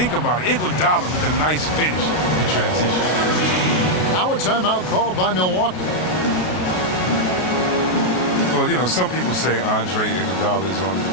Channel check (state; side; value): late; right; 33 ms